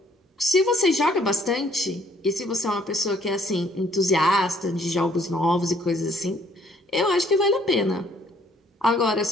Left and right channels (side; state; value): both; normal; correlation 0.63